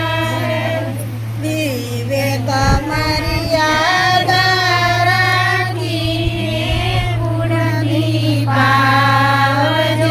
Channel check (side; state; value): both; identical; correlation 1.00